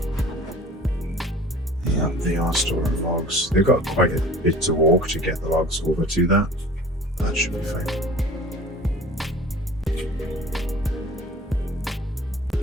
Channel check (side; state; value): both; normal; correlation 0.44